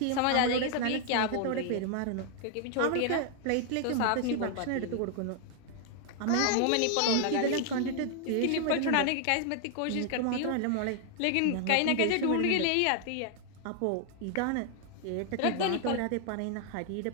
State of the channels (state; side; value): different; both; correlation 0.00